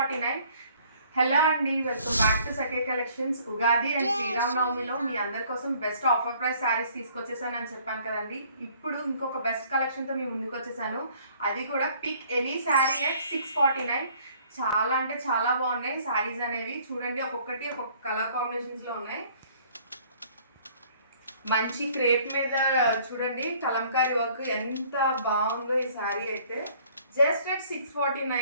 Hello అండి, welcome back to Sakhi collections. Ugadi and శ్రీరామనవమిలో మీ అందరి కోసం బెస్ట్ ఆఫర్ ప్రైస్ శారీస్ తీసుకొచ్చేసానని చెప్పాను కదండి. ఇప్పుడు ఇంకొక బెస్ట్ కలెక్షన్తో మీ ముందుకు వచ్చేసాను. అది కూడా పిక్ ఎనీ శారీ అట్ 649. చాలా అంటే చాలా బాగున్నాయి శారీస్ అనేవి. చూడండి, ఒక్కొక్కటి ఒక్కొక్క కలర్ కాంబినేషన్స్లో ఉన్నాయి. మంచి క్రేప్ మీద చూడండి కలంకారీ వర్క్ ఎంత బాగుందో ఈ శారీ అయితే. Just at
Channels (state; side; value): inverted; both; correlation -0.58